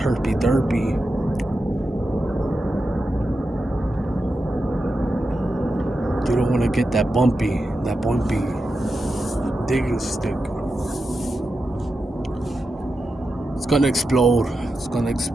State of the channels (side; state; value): both; normal; correlation 0.89